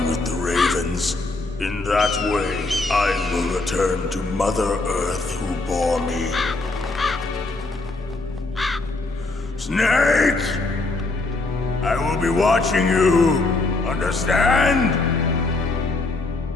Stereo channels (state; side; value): quieter; right; 3.2 dB